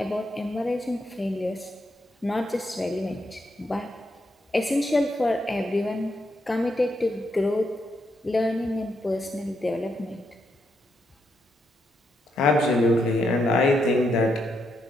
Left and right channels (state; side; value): normal; both; correlation 0.80